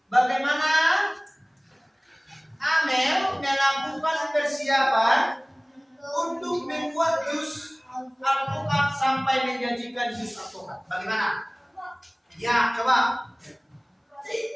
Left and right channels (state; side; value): identical; both; correlation 1.00